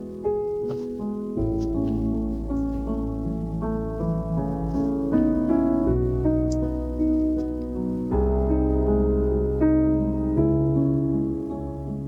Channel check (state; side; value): identical; both; correlation 1.00